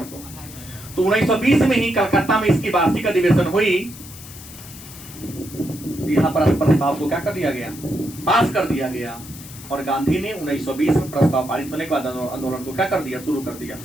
को। तो 1920 में ही कलकत्ता में इसकी वार्षिक अधिवेशन हुई। यहाँ पर प्रस्ताव को क्या कर दिया गया? पास कर दिया गया। और गांधी ने 1920 में प्रस्ताव पारित होने के बाद आंदोलन को क्या कर दिया? शुरू कर दिया।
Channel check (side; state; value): left; noise; hiss, 16 dB below the sound